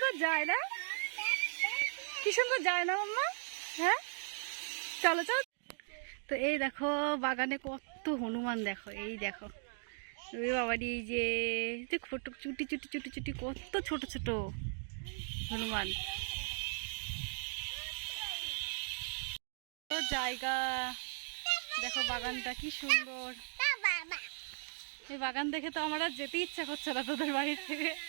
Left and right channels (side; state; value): left; silent; 53 dB below the other